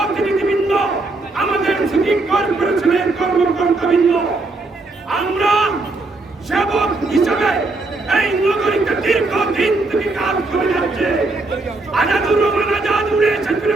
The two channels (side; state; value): left; quieter; 3.3 dB